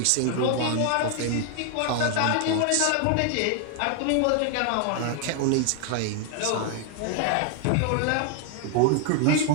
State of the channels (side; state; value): both; different; correlation 0.00